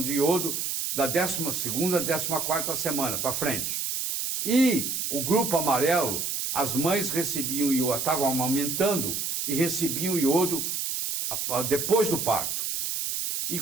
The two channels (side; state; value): right; noise; hiss, 2 dB below the sound